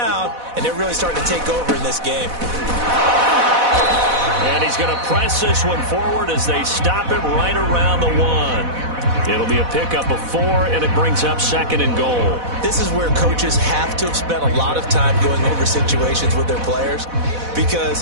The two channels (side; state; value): left; late; 4.1 ms